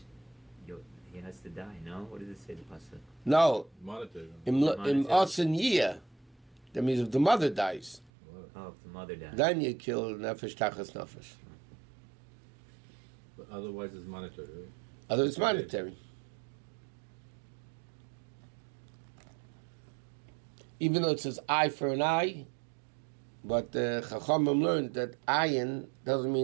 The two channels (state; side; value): drops out; left; at 8.1 s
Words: he has to die? No. What does it say? The pasuk? No. Monetary. In Osen Yiyah, that means if the mother dies. Oh, if the mother dies. Then you kill nefesh tachas nefesh. But otherwise, it's monetary. Right? Otherwise, it's monetary. Even though it says eye for an eye, but Chachamim learned that ayin doesn't